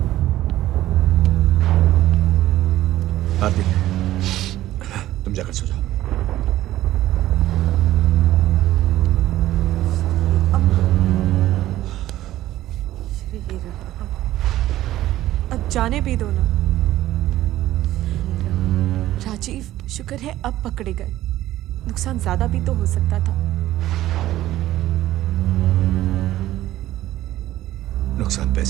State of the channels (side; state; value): left; quieter; 14.5 dB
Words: आरती, तुम जाकर सो जाओ। अब जाने भी दो ना। राजीव, शुक्र है अब पकड़े गए। नुकसान ज्यादा भी तो हो सकता था। नुकसान